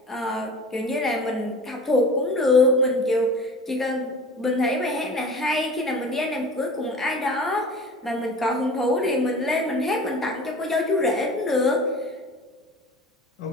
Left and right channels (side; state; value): both; normal; correlation 0.39